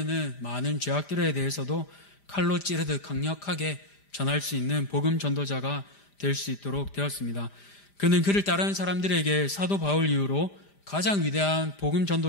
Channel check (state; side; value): late; right; 5.0 ms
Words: 많은 죄악들에 대해서도 칼로 찌르듯 강력하게 전할 수 있는 복음 전도자가 될 수 있도록 되었습니다. 그는 그를 따르는 사람들에게 사도 바울 이후로 가장 위대한 복음